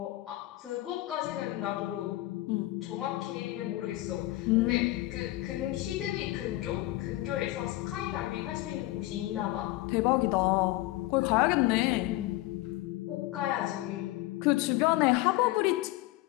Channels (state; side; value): quieter; right; 17.7 dB